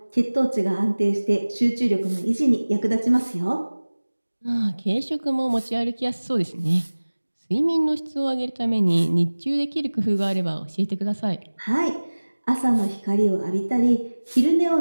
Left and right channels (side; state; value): both; inverted; correlation -1.00